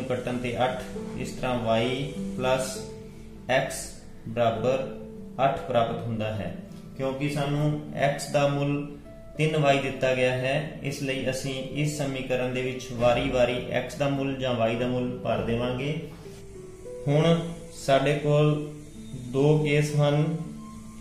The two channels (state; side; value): identical; both; correlation 1.00